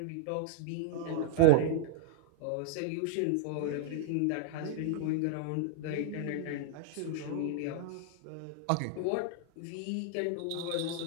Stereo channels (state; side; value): different; both; correlation -0.01